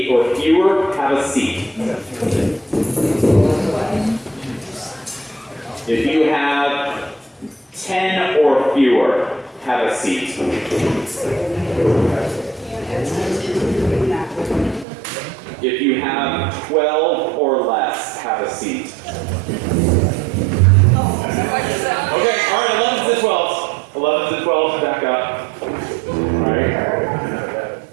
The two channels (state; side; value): drops out; left; at 14.9 s